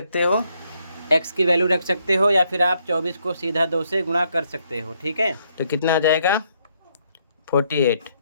हो, x की वैल्यू रख सकते हो, या फिर आप 24 को सीधा 2 से गुणा कर सकते हो, ठीक है। तो कितना आ जाएगा 48,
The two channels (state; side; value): inverted; both; correlation -0.73